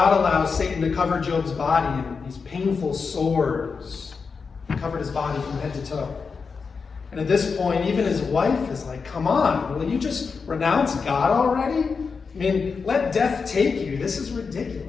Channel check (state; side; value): quieter; right; 5.2 dB